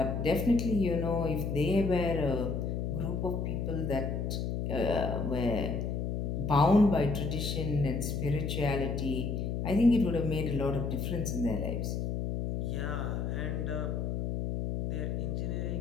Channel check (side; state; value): left; noise; hum, 1 dB below the sound